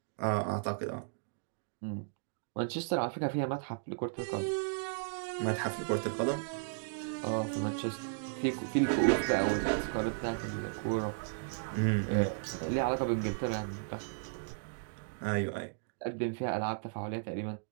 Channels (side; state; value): left; silent; digital silence